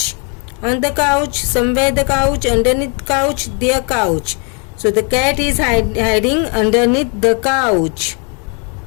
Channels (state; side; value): quieter; right; 36.5 dB